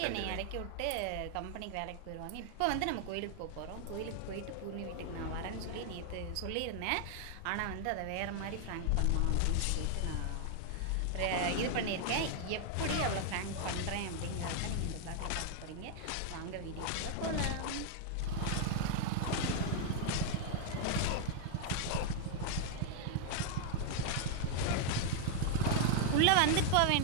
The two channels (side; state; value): both; different; correlation 0.00